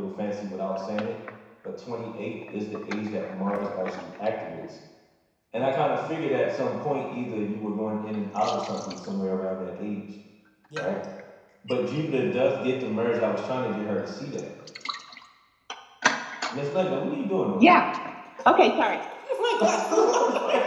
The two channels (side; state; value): both; identical; correlation 1.00